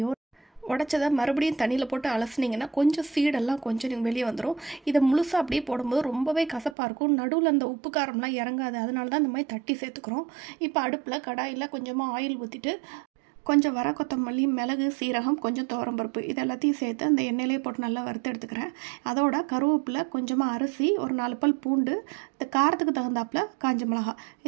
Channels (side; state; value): left; drops out; at 6.8 s